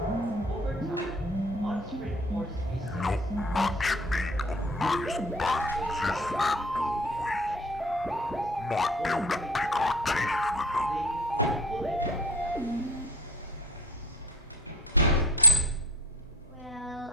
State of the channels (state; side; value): normal; both; correlation 0.44